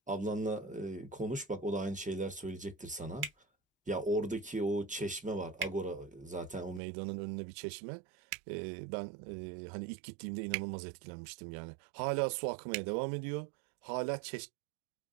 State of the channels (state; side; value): drops out; left; at 6.8 s